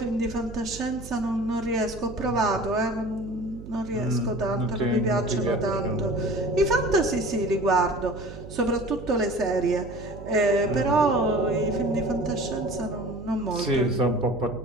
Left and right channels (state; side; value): noise; right; hum, 14 dB below the sound